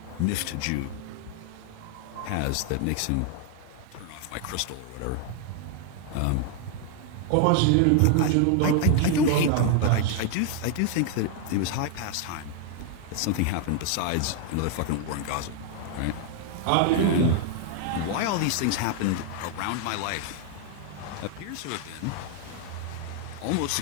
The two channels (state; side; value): different; both; correlation 0.00